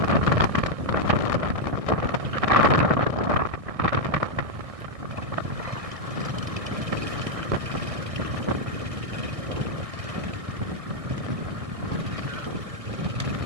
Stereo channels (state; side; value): late; left; 1.6 ms